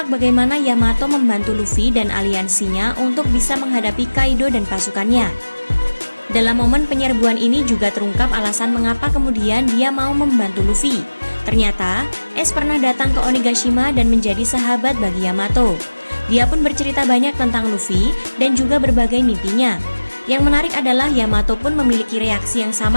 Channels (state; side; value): inverted; both; correlation -1.00